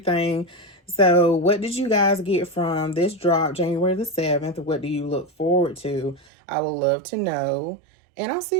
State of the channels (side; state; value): left; drops out; at 6.2 s